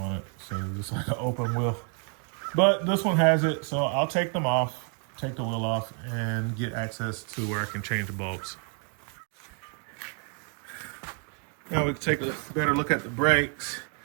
it. So it's like an open wheel. But this one has it, so I'll take them off, take the wheel off, and get access to where I can change the bulbs. Now we can take a better look at the brakes.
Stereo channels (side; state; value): left; quieter; 38.7 dB